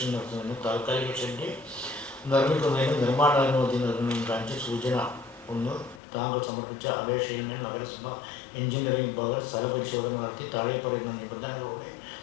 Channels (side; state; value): right; drops out; at 6.0 s